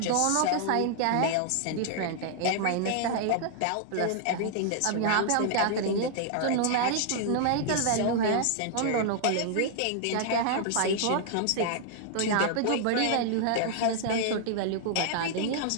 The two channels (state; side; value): different; both; correlation 0.00